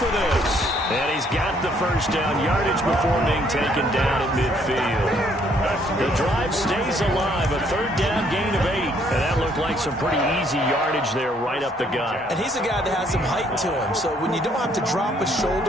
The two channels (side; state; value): both; normal; correlation 0.66